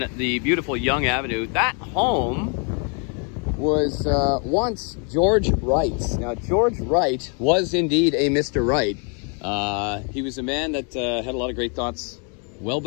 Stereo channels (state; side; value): quieter; right; 39.1 dB